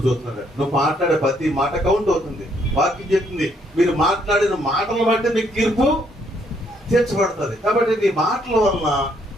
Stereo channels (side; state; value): both; normal; correlation 0.70